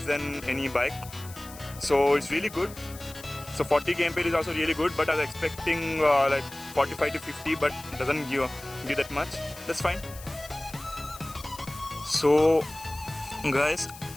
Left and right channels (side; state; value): left; noise; hiss, 17 dB below the sound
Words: than any bike, so it's really good. So 40 kmpl is also really good, but I was expecting 45 to 50, but it doesn't give that much. That's fine. So guys,